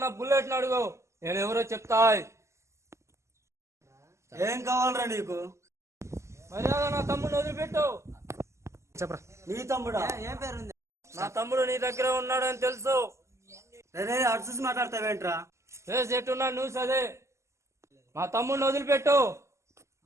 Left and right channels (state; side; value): late; left; 0.13 ms